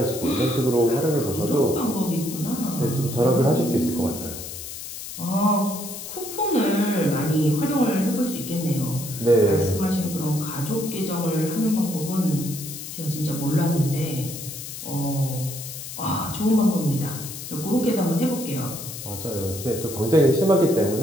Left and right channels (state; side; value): noise; left; hiss, 10 dB below the sound